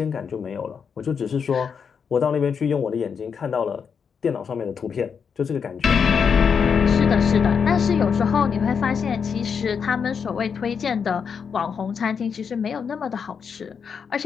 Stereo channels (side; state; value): right; quieter; 6.5 dB